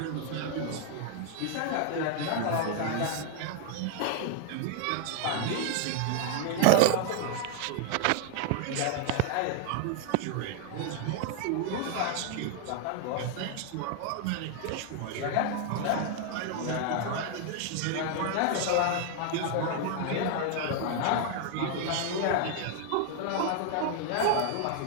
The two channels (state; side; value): different; both; correlation 0.00